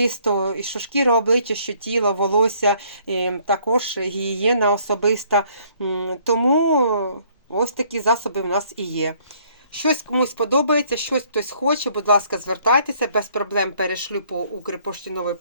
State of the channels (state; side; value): inverted; both; correlation -0.63